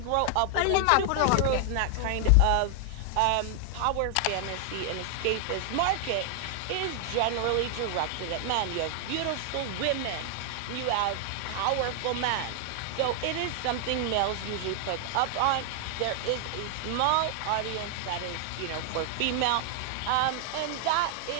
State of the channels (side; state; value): both; different; correlation 0.00